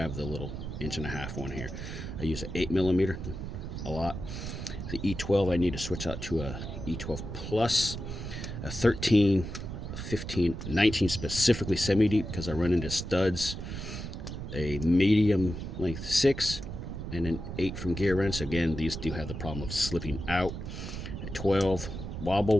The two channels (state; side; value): noise; right; rumble, 7 dB below the sound